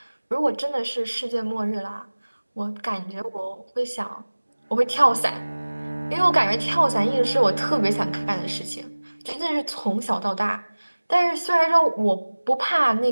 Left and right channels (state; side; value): inverted; both; correlation -1.00